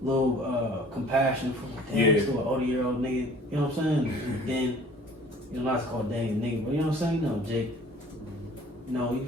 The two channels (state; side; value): normal; both; correlation 0.51